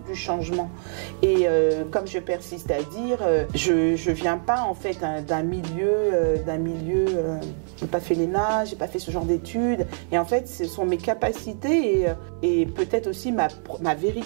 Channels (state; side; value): silent; left; digital silence